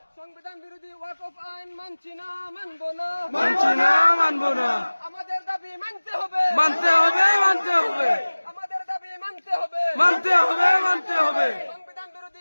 সংবিধান বিরোধী ওয়াকফ আইন মানছি না, মানব না, মানছি না, মানব না। আমাদের দাবি মানতে হবে, মানতে হবে, মানতে হবে, আমাদের দাবি মানতে হবে, মানতে হবে, মানতে হবে। সংবিধান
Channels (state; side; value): inverted; both; correlation -1.00